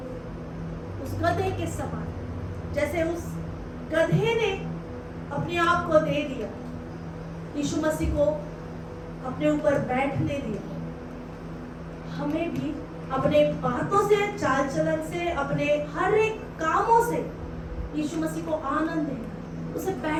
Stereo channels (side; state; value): both; identical; correlation 1.00